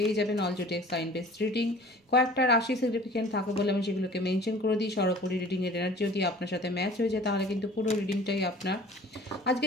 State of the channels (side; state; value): both; normal; correlation 0.46